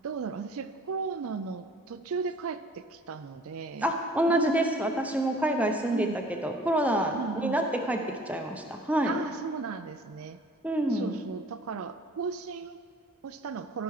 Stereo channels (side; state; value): both; normal; correlation 0.51